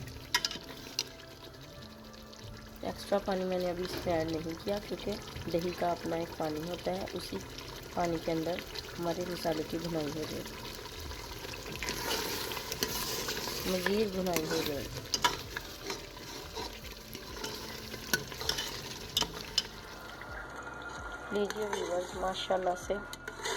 एक्स्ट्रा पानी मैंने अभी इसमें ऐड नहीं किया क्योंकि दही का अपना एक पानी होता है, उसी पानी के अंदर हमारे मसाले की भुनाई हो जाएगी, मज़ीद भुनाई हो जाएगी। लीजिए व्यूअर्स, माशाल्लाह से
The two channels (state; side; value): identical; both; correlation 1.00